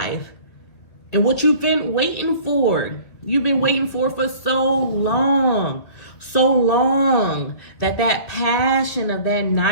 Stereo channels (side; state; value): right; late; 2.4 ms